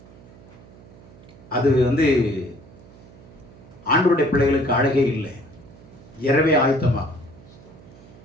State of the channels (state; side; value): noise; right; hum, 21 dB below the sound